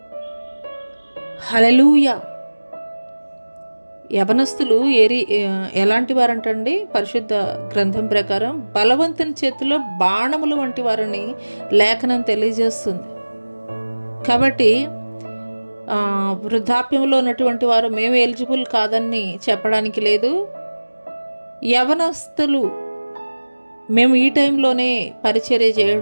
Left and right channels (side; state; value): both; inverted; correlation -1.00